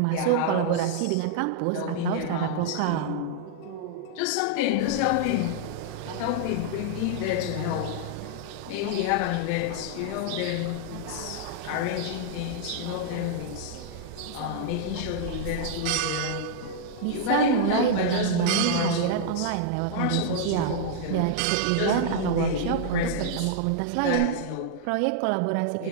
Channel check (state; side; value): different; both; correlation -0.01